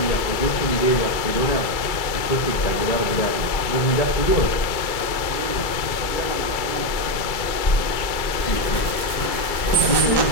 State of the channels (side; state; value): right; late; 2.3 ms